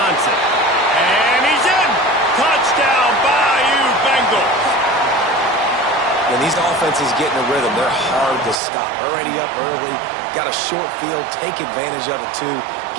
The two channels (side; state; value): left; drops out; at 8.6 s